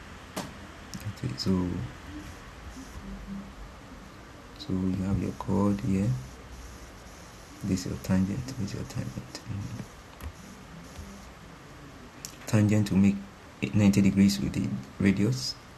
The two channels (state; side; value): identical; both; correlation 1.00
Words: so you have your chord here, this is your tangent, this is your tangent. Tangent to make it 90 degrees with the radius.